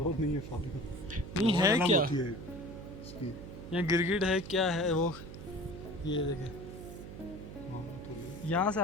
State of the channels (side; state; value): right; noise; hum, 12 dB below the sound